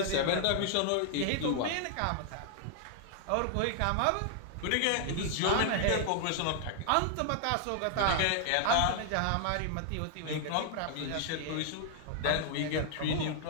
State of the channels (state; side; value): different; both; correlation 0.00